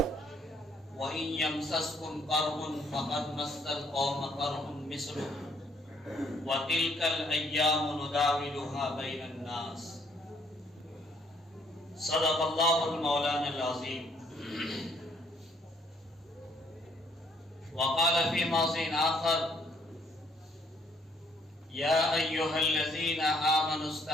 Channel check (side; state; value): both; normal; correlation 0.67